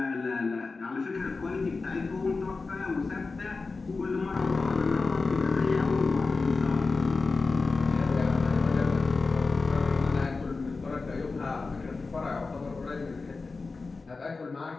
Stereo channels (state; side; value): quieter; right; 4.0 dB